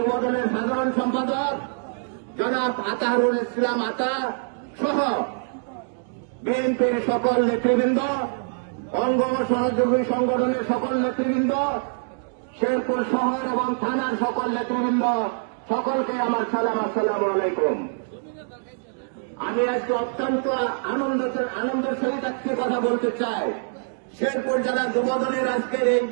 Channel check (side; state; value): left; silent; digital silence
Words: সাধারণ সম্পাদক জনাব আতাহারুল ইসলাম আতা সহ বিএনপির সকল নেতৃবৃন্দ, অঙ্গ ও সহযোগী সংগঠনের সকল নেতৃবৃন্দ, শেরপুর শহর এবং থানার সকল নেতৃবৃন্দ, সকলকে আমার সালাম। আসসালামু আলাইকুম। আমি আজকে অত্যন্ত আনন্দের সহিত আজকে কথা বলতে চাই। শেরপুর জেলা যুবদলের আজকের এই